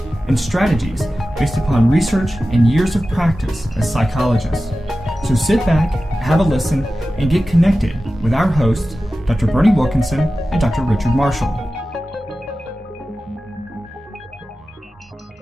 and strategies based upon research and years of practice as psychologists. So sit back, have a listen, and get connected with our hosts, Dr. Berney Wilkinson and Dr. Richard Marshall.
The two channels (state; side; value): normal; both; correlation 0.94